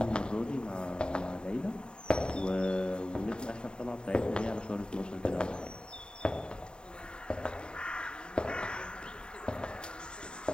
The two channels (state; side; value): late; right; 0.049 ms